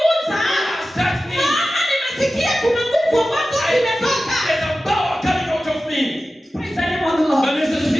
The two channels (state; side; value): normal; both; correlation 0.94